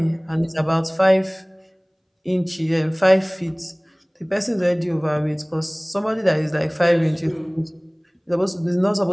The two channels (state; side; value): identical; both; correlation 1.00